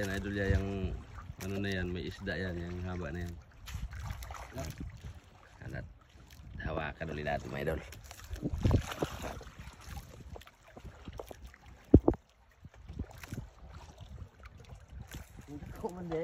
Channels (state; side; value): identical; both; correlation 1.00